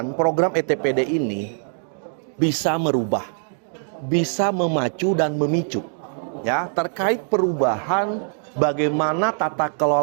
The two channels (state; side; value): silent; left; digital silence